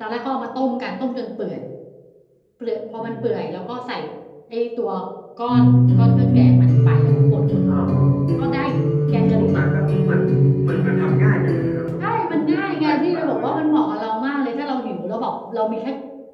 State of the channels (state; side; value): identical; both; correlation 1.00